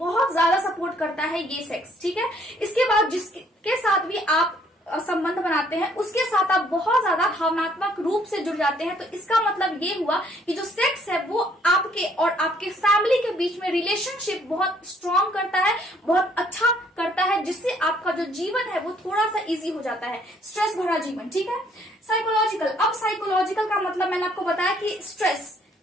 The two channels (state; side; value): normal; both; correlation 0.64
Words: ज्यादा सपोर्ट करता है ये सेक्स। ठीक है, इसके बाद जिसके साथ भी आप संबंध बनाते हैं उसके साथ आप बहुत ज्यादा भावनात्मक रूप से जुड़ जाते हैं। तो इसका मतलब ये हुआ कि जो सेक्स है वो आपके और आपके फैमिली के बीच में रिलेशनशिप बहुत स्ट्रांग करता है, बहुत अच्छा करता है, जिससे आपका जो जीवन है वो थोड़ा सा इजी हो जाता है, स्ट्रेस भरा जीवन। ठीक है, साइकोलॉजिकल, अब साइकोलॉजिकल का मतलब मैंने आपको बताया कि स्ट्रेस